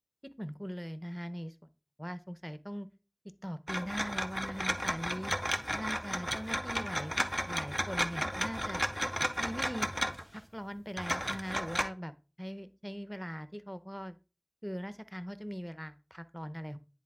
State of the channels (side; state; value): both; identical; correlation 1.00